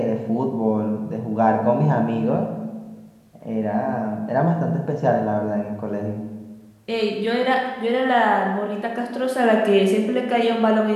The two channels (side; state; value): both; identical; correlation 1.00